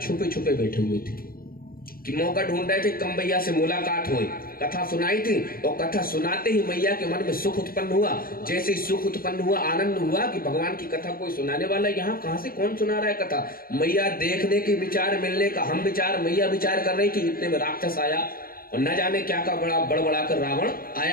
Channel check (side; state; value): right; late; 0.43 ms